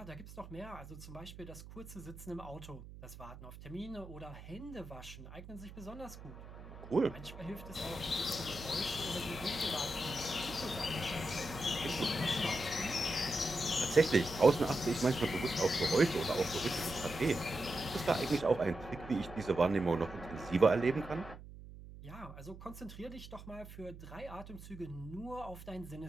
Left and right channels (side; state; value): right; noise; hum, 15 dB below the sound